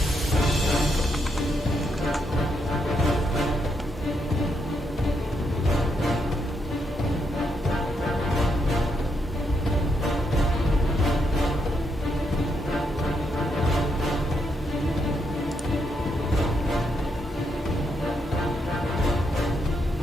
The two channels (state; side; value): normal; both; correlation 0.78